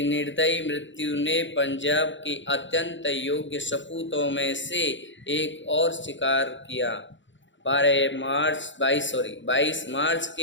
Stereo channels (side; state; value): right; late; 0.54 ms